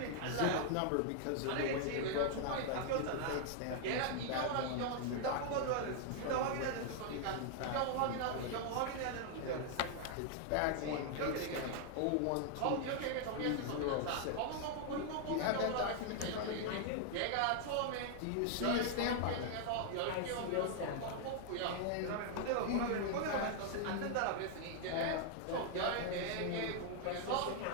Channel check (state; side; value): different; both; correlation 0.00